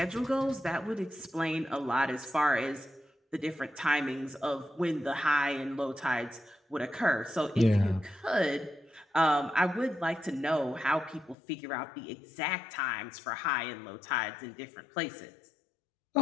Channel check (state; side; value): drops out; right; at 11.4 s